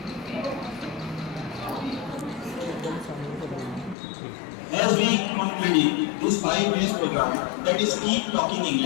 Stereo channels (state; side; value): drops out; right; at 4.0 s